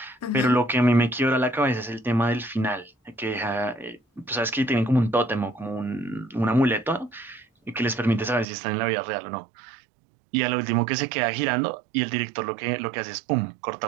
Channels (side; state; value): left; drops out; at 8.5 s